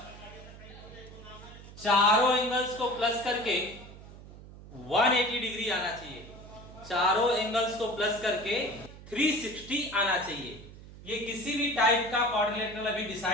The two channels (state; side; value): noise; right; hum, 17 dB below the sound